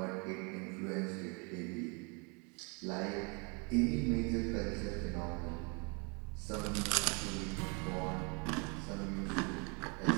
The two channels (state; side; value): quieter; left; 33.6 dB